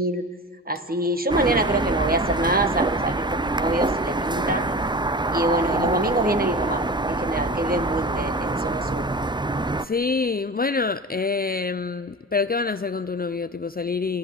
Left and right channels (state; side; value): normal; both; correlation 0.32